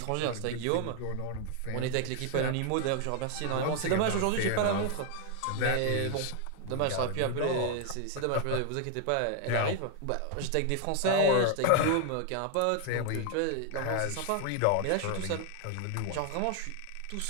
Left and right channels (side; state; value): both; different; correlation 0.00